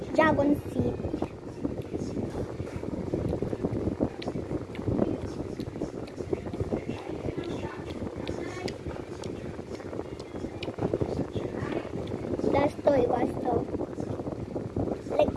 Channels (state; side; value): identical; both; correlation 1.00